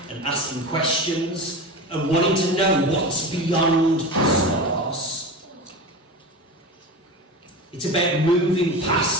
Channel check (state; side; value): normal; both; correlation 0.28